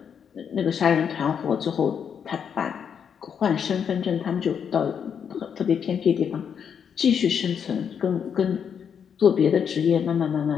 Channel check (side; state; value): right; quieter; 7.5 dB